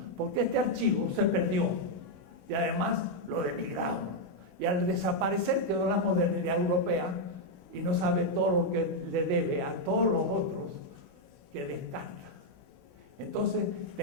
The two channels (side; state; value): left; late; 16 ms